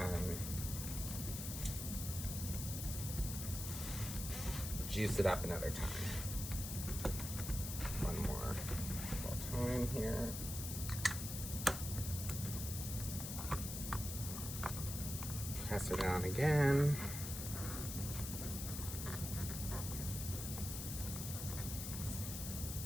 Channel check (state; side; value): noise; left; hiss, 5 dB below the sound